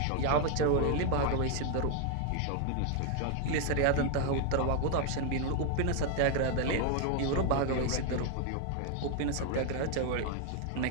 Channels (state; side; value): different; both; correlation 0.01